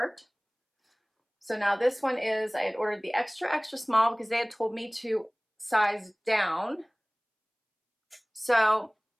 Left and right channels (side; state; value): both; identical; correlation 1.00